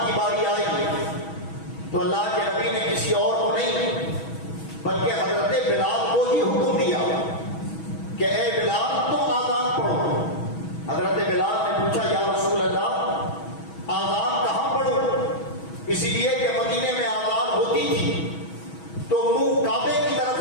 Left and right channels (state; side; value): late; right; 6.2 ms